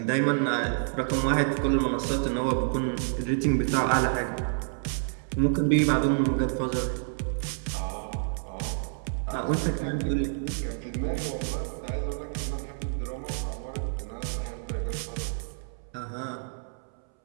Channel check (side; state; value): left; silent; 59 dB below the other